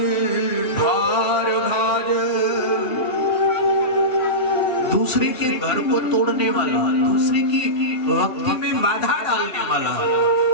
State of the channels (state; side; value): late; right; 3.1 ms